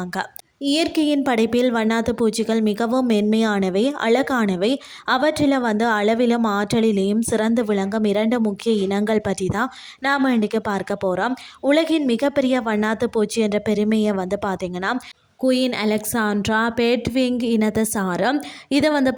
இயற்கையின் படைப்பில் வண்ணாத்து பூச்சிகள் மிகவும் மென்மையானவை, அழகானவை. அவற்றில் அளவிலும் ஆற்றலிலேயும் சிறந்து விளங்கும் இரண்டு முக்கிய இனங்கள் பற்றி தான் நாம் இன்றைக்கு பார்க்க போகிறோம். உலகின் மிகப்பெரிய வண்ணாத்து பூச்சி என்ற பெருமையை பார்த்தீங்கன்னா குயின் அலெக்சாண்ட்ரா பேட்விங் இனத்தை சாரம். இதை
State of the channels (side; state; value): both; identical; correlation 1.00